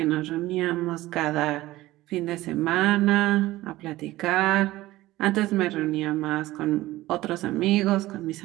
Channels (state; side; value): quieter; left; 17.1 dB